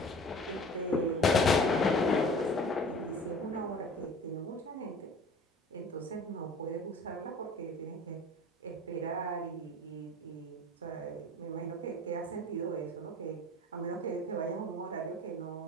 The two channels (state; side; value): normal; both; correlation 0.43